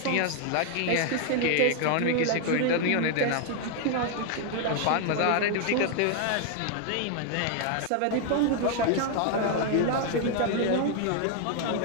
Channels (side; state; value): both; different; correlation 0.00